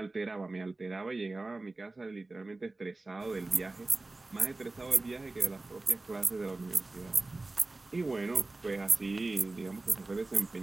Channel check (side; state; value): left; quieter; 3.2 dB